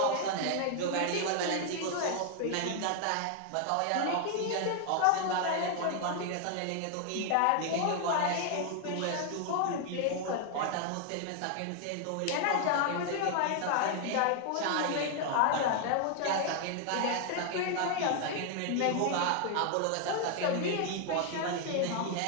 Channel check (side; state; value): both; different; correlation 0.00